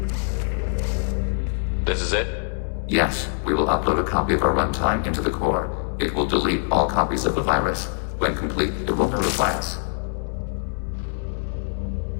This is it? Yes, we will upload a copy of our runtime into the core. It will delete all copies of the virus. When complete, it will notify us.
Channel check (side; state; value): right; silent; 63 dB below the other